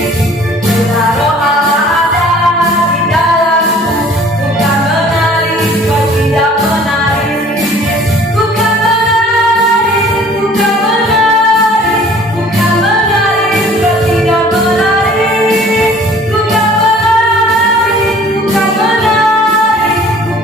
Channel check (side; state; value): both; normal; correlation 0.52